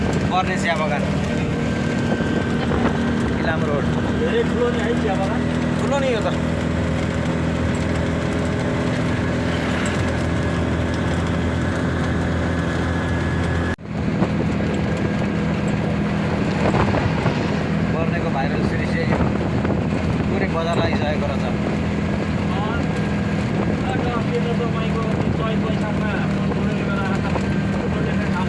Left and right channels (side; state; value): both; identical; correlation 1.00